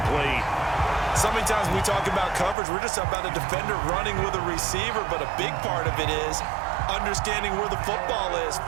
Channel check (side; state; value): left; drops out; at 2.6 s